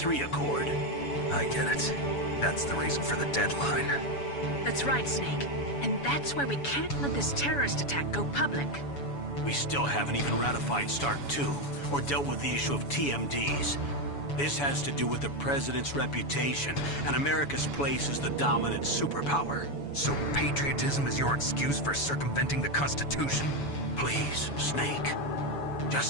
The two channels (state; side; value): late; right; 7.0 ms